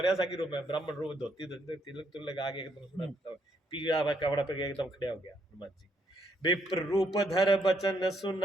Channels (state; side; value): normal; both; correlation 0.73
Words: सा की रूप है, ब्राह्मण रूप, धोती तिलक तुलक लगा के एकदम सुना पीला हुआ कपड़ा पे एकदम खड़े हो गया हनुमान जी। विप्र रूप धर बचन